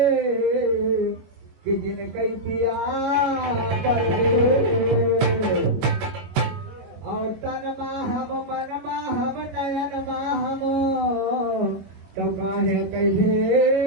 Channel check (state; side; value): late; left; 22 ms